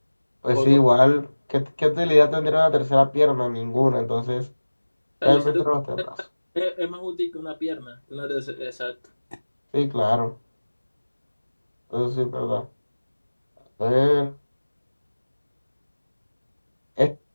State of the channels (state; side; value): inverted; both; correlation -1.00